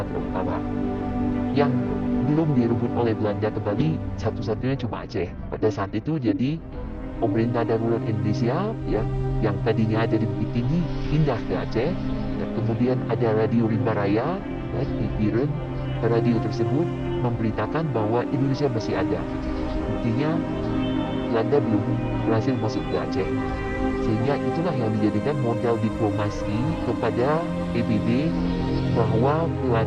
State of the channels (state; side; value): identical; both; correlation 1.00